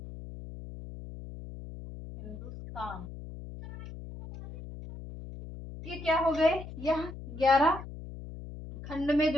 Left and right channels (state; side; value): noise; left; hum, 12 dB below the sound